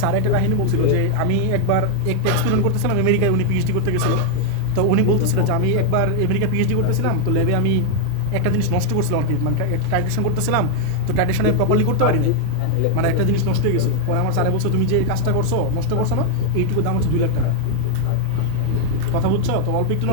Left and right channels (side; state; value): both; different; correlation 0.00